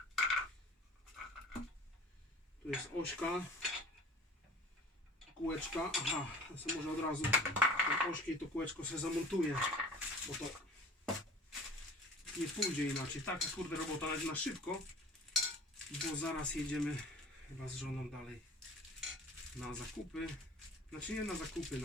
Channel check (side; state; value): both; normal; correlation 0.43